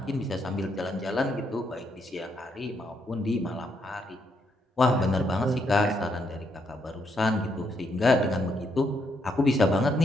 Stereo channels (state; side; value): normal; both; correlation 0.76